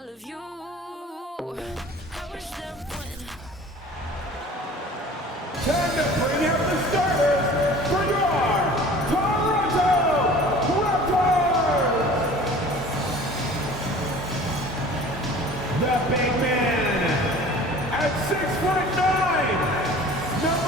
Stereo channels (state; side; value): normal; both; correlation 0.44